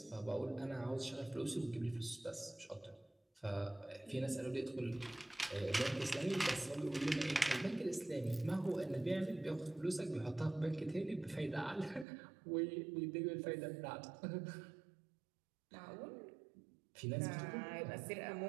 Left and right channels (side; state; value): left; drops out; at 12.1 s